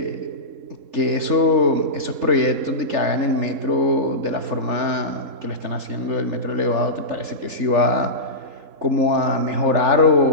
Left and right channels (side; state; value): left; late; 3.4 ms